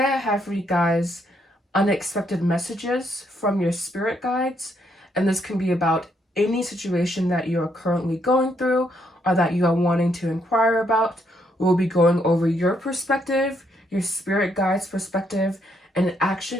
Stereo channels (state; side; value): normal; both; correlation 0.74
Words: I have for you guys unexpected messages from your spirit guides, and this can be about any situation that you are currently going through or that you are wanting to inquire about. We'll be going over your perspective, your spirit guides' perspective, and an